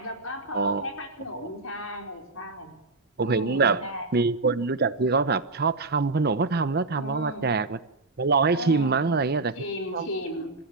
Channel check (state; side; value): quieter; left; 3.5 dB